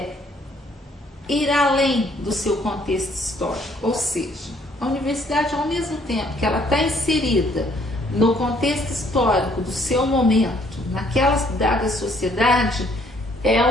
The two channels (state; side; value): normal; both; correlation 0.64